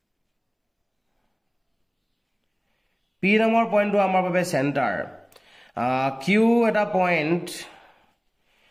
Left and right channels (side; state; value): both; identical; correlation 1.00